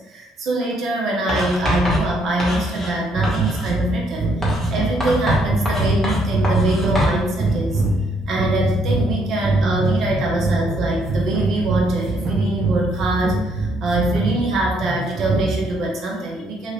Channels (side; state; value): both; normal; correlation 0.71